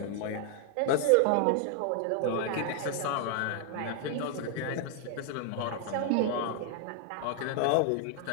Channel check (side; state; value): both; different; correlation 0.00